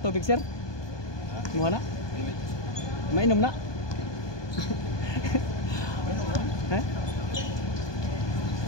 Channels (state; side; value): late; right; 1.2 ms